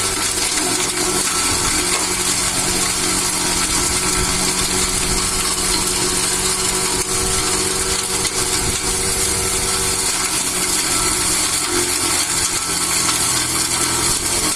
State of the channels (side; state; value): both; identical; correlation 1.00